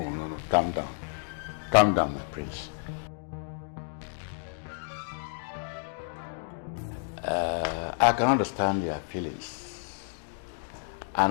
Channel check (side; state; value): right; silent; digital silence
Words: Calm down. Calm down, my prince. I can understand your feelings